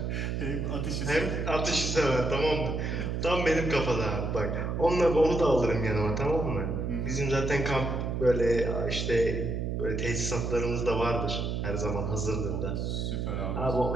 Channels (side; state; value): right; noise; hum, 1 dB below the sound